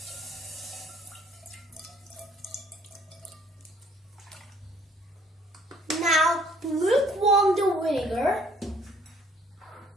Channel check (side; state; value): both; normal; correlation 0.60